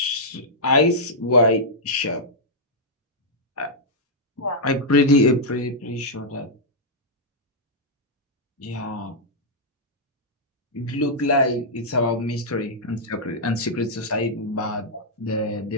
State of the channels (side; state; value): both; normal; correlation -0.08